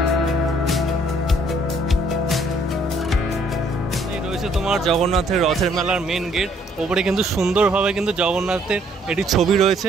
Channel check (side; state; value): both; normal; correlation 0.65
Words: তোমার জগন্নাথের রথের মেলার মেন গেট, ওপরে কিন্তু সুন্দরভাবে কিন্তু জগন্নাথের এটি ছবি